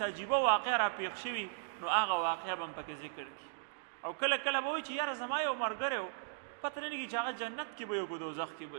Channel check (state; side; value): silent; left; digital silence